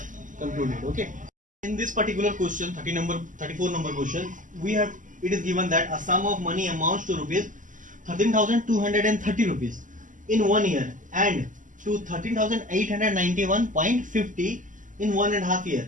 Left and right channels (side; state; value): left; late; 0.38 ms